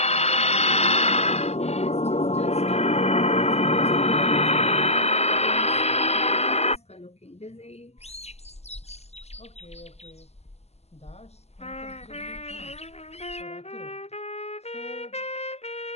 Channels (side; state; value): right; late; 0.30 ms